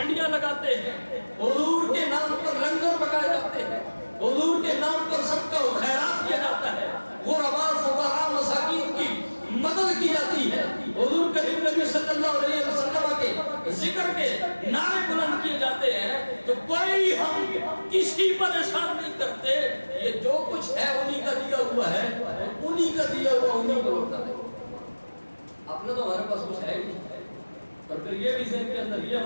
لگاتے ہیں، حضور کے نام پر لنگر پکائے جاتے ہیں، حضور کے نام پر صدقہ و خیرات کیا جاتا ہے، غرباء فقراء مساکین کی مدد کی جاتی ہے، حضور کریم نبی صلی اللہ علیہ وسلم کے ذکر کے نعرے بلند کیے جاتے ہیں، تو کوئی ہم کسی پر احسان نہیں کرتے، یہ جو کچھ ہے انہی کا دیا ہوا ہے، انہی کا دیا ہوا انہی کو لوٹا ہے۔ اپنا تو ہمارے پاس کچھ ہے ہی نہیں، اور پھر یہ بھی ذہن کے اندر یہ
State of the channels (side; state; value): both; inverted; correlation -1.00